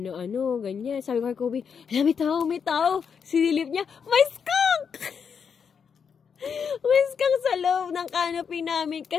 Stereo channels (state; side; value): quieter; right; 6.6 dB